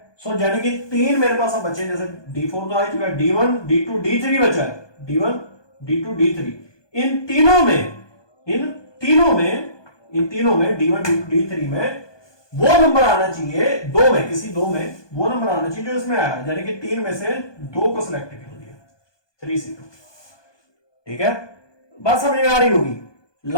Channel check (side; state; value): right; late; 1.2 ms